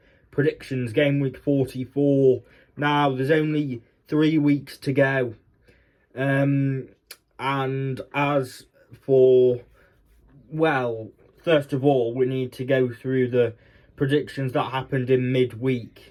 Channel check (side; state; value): both; identical; correlation 1.00